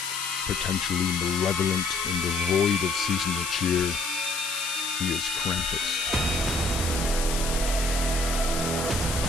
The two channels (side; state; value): left; noise; hiss, 4 dB below the sound